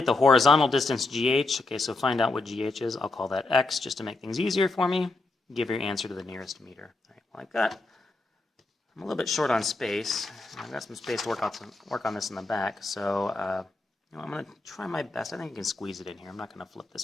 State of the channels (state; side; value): quieter; right; 3.2 dB